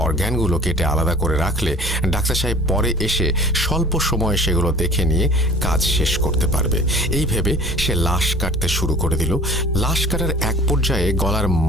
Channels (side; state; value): both; normal; correlation 0.47